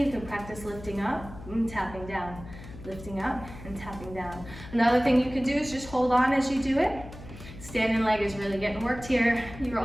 You can practice lifting up and tapping down. Lifting up and tapping down. Another thing you can do is just hold on as you do it. Standing leg is really getting worked here. You're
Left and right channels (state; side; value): noise; left; hum, 15 dB below the sound